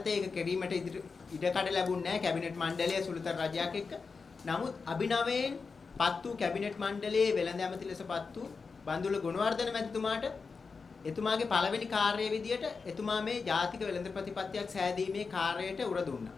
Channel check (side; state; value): right; quieter; 4.8 dB